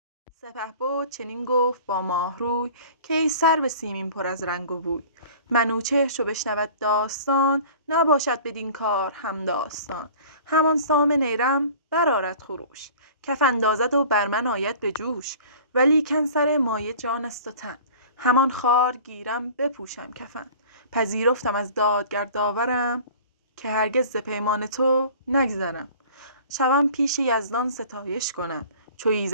سپهبد چنین گفت با ماه روی، که ای سرو سیمین پر از رنگ و بوی. منوچهر چو بشنود داستان، نباشد بدین کار هم داستان. همان سام نیرم برآرد خروش، کف اندازد و بر من آید به جوش. ولیکن سر مایه جان است و تن، همان خوار گیرم بپوشم کفن. پذیرفتم از دادگر داورم، که هرگز ز پیمان تو نگذرم. شوم پیش یزدان ستایش کنم، چو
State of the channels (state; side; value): inverted; both; correlation -0.44